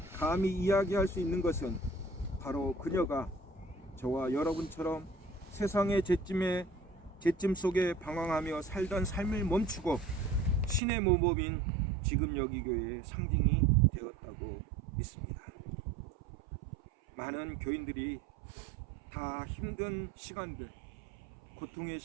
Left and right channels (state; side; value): drops out; left; at 10.8 s